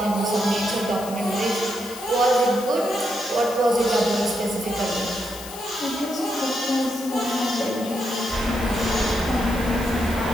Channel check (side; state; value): left; noise; hiss, 13 dB below the sound